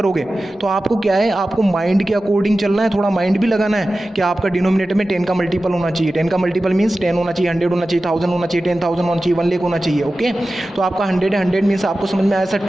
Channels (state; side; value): normal; both; correlation 0.95